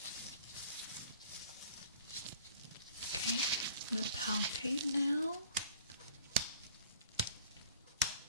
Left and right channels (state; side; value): inverted; both; correlation -0.50